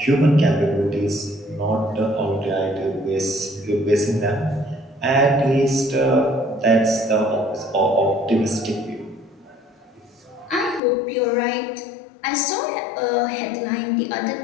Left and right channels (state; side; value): drops out; right; at 10.8 s